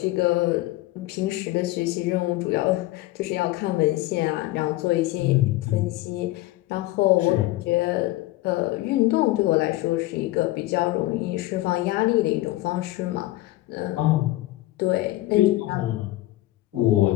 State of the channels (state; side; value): quieter; right; 17.5 dB